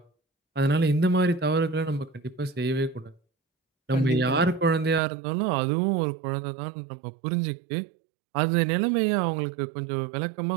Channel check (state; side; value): drops out; left; at 5.0 s